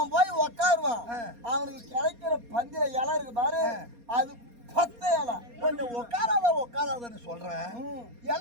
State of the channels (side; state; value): left; late; 4.2 ms